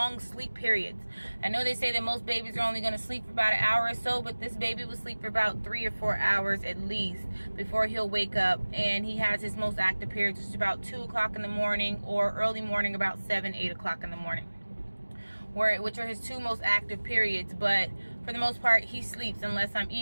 sleep periods. I know they say that most babies are only going to sleep for about an hour or so, but this baby will sleep for about 3 or 4 hours at least before he'll wake up. And he has his most active periods, which is about 2 o'clock in the morning, or early morning about 7, 8 o'clock in the morning, which are his 2 most active periods. But for the most part, he sleeps unless I'm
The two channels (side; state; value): both; inverted; correlation -1.00